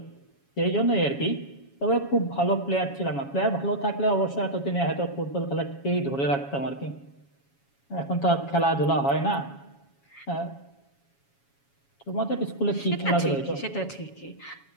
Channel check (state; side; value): late; right; 7.2 ms